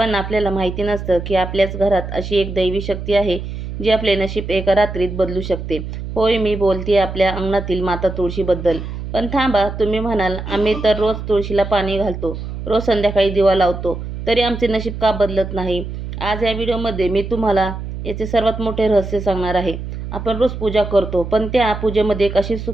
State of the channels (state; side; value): noise; right; hum, 7 dB below the sound